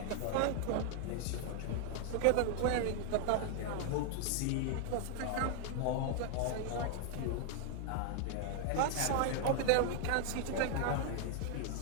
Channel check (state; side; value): different; both; correlation 0.00